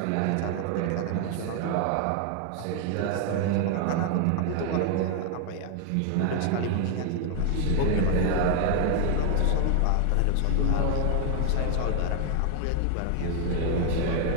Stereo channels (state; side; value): different; both; correlation 0.00